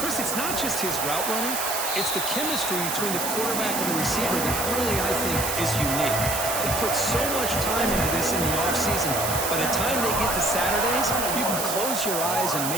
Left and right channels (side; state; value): right; noise; hiss, 2 dB below the sound